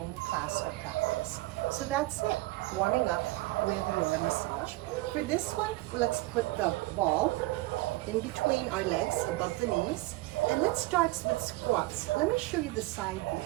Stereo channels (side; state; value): left; quieter; 20.0 dB